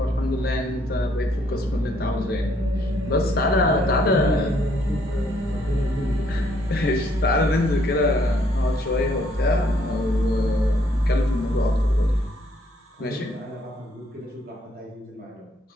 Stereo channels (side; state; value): both; normal; correlation 0.68